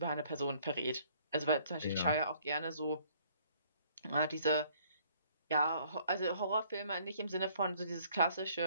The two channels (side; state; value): both; inverted; correlation -0.61